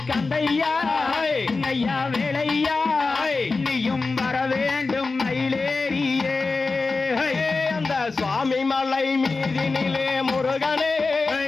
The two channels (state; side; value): quieter; right; 3.9 dB